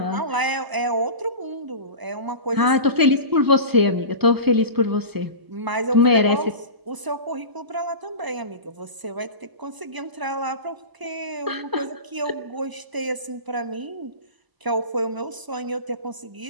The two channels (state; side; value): late; left; 1.0 ms